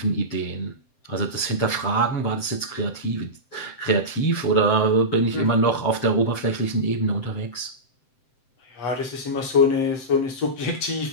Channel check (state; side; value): late; right; 7.7 ms